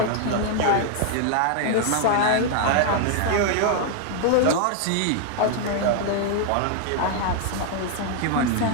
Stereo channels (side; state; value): both; different; correlation 0.00